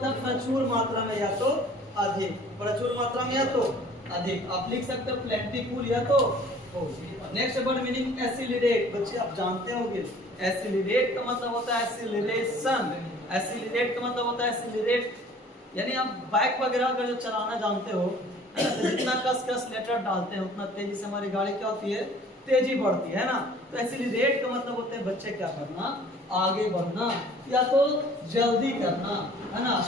है प्रचुर मात्रा में या तो अधिक, प्रचुर मात्रा में या तो अधिक। आप लिख सकते हो प्लेंटीफुल या तो। Next word meaning accelerate. बच्चे आप जानते होंगे एसिलरेट का मतलब होता है एसिलरेशन। एसिलरेट का मतलब होता है एसिलरेट, यानी आप बाइक वगैरह अगर जो चलाना जानते हो, तो जितना कस लेटर डालते हैं उतना तेजी से हमारी गाड़ी क्या होती है, तेजी बढ़ती है ना। तो एसिलरेट का मतलब होता है बच्चे क्या करना, आगे बढ़ना या तो जल्दी करना, है ना,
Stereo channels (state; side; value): normal; both; correlation 0.51